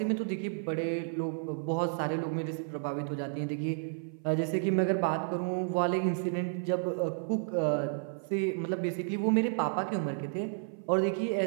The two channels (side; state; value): left; silent; 57 dB below the other